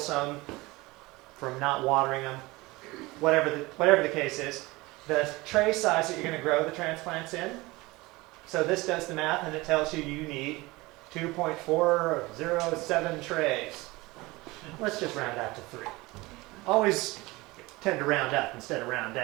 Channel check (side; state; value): left; quieter; 21.9 dB